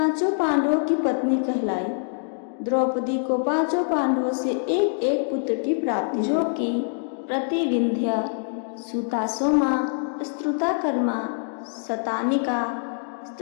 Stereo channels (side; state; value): right; silent; digital silence